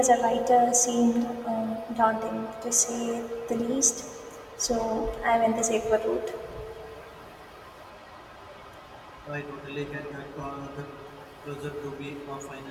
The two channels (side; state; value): both; identical; correlation 1.00